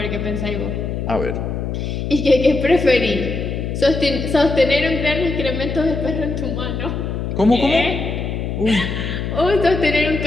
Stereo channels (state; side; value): noise; left; hum, 3 dB below the sound